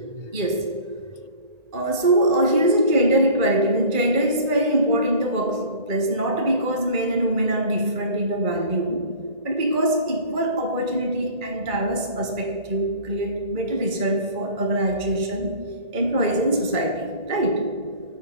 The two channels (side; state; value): left; late; 1.8 ms